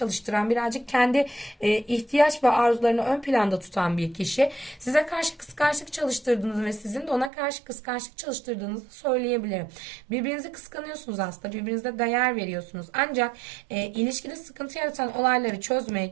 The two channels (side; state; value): left; drops out; at 7.3 s